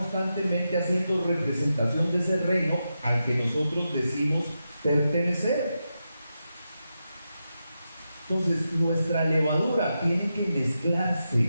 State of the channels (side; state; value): both; inverted; correlation -0.88